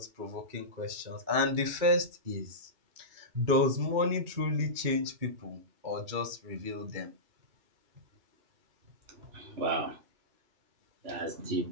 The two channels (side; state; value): left; late; 2.3 ms